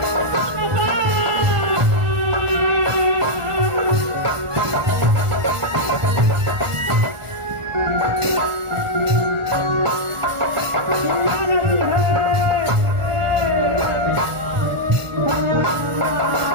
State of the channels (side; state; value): left; late; 1.4 ms